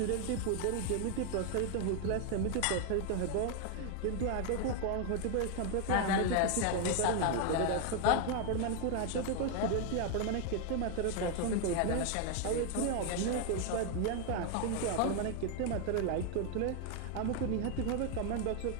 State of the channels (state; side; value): different; both; correlation 0.01